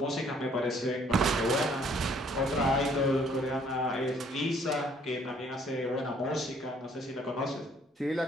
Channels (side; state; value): both; normal; correlation 0.62